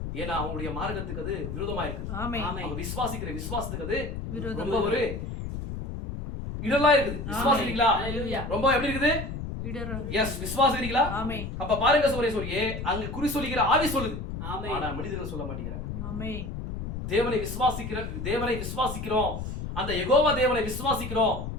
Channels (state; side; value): noise; left; rumble, 6 dB below the sound